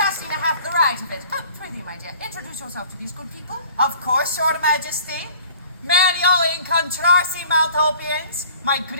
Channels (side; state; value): both; inverted; correlation -0.49